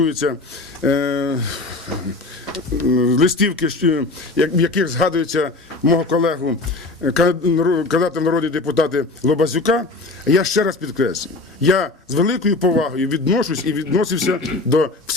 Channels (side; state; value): right; quieter; 3.2 dB